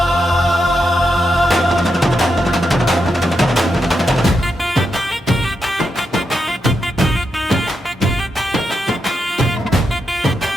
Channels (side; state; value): both; normal; correlation 0.84